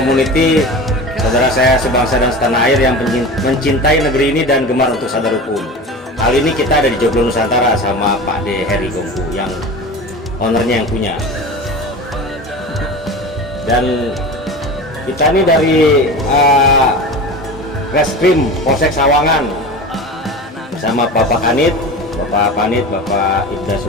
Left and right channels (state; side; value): normal; both; correlation 0.32